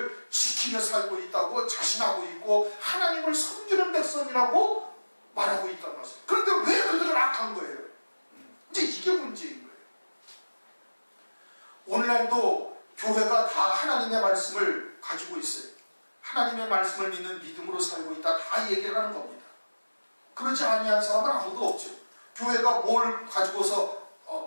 지키며 살고 있다고 자신하고 있고 하나님을 섬기는 백성이라고 말하고 있단 말이에요. 그런데 왜 그들은 악한 거예요? 이제 이게 문제인 거예요. 오늘날도 교회가 다 하나님의 말씀을 가지고 있어요. 하나님의 말씀을 믿는 믿음으로 살고 있다. 다 얘기를 하는 겁니다. 그렇지 아니한 사람은 아무도 없죠. 교회가 뭘 가지고서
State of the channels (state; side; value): inverted; both; correlation -1.00